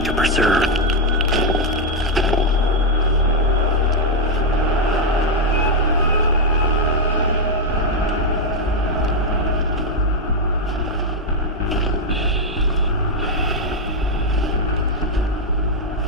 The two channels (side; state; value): both; normal; correlation 0.02